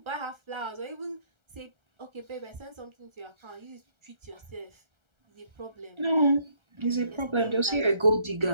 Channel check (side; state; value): left; late; 1.3 ms